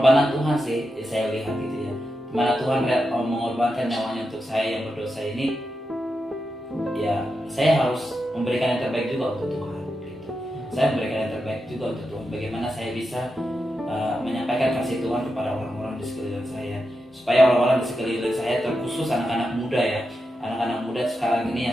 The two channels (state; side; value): normal; both; correlation 0.88